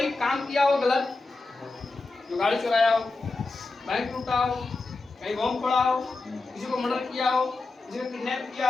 काम किया हो गलत, जो गाड़ी चुराया हो, बैंक लूटा हो, कहीं बम फोड़ा हो, किसी को मर्डर किया हो, किसी को किडनैप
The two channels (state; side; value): quieter; right; 3.5 dB